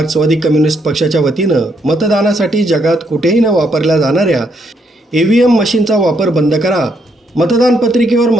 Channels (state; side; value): normal; both; correlation 0.74